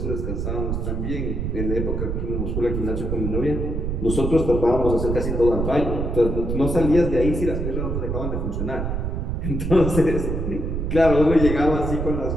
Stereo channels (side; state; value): right; noise; rumble, 2 dB below the sound